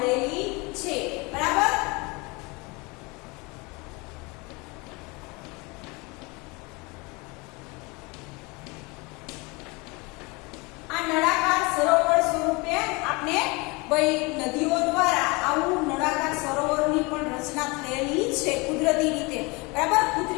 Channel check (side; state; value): right; quieter; 26.7 dB